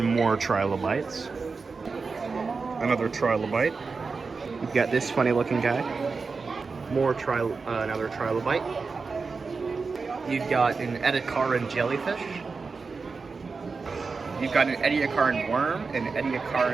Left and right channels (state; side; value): quieter; left; 4.6 dB